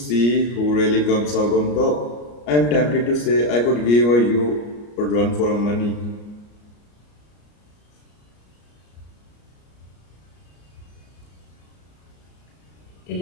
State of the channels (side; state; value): right; late; 34 ms